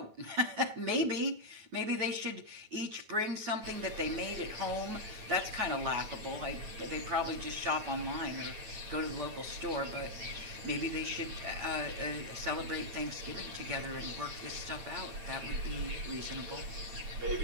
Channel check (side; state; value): left; late; 9.2 ms